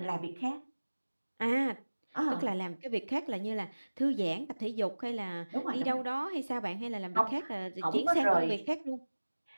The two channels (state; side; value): inverted; both; correlation -1.00